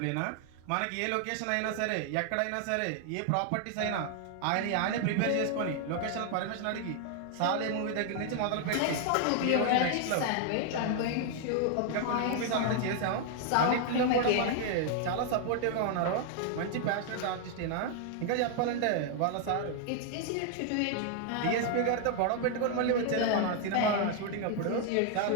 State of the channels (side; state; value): both; different; correlation 0.00